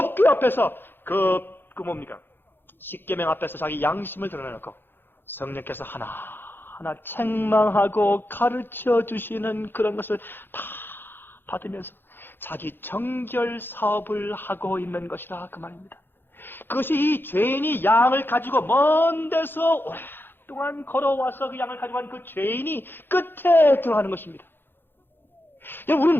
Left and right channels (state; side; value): late; right; 0.10 ms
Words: 앞에서 그 뭡니까? 십계명 앞에서 자기 양심을 드러내놓고 성령께서 하나하나 책망하고 가르쳐 주시는 그런 것을 다 받으면서 자기 정결 사업을 하고 있는 것이라 그 말입니다. 그것이 이 죄인이 양을 가지고 먼 데서 오랫동안 걸어와서 그 양을 가지고 간 그 죄인이 끝에 들어가는 것입니다.